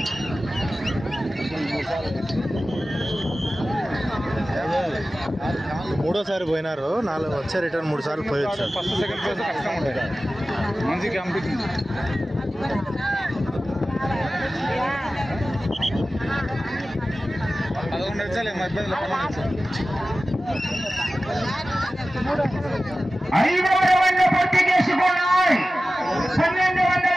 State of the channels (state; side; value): normal; both; correlation 0.95